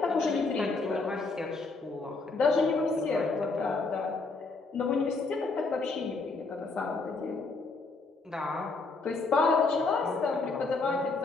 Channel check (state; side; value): quieter; right; 3.8 dB